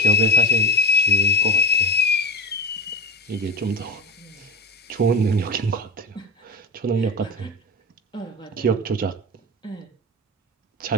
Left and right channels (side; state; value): both; normal; correlation 0.22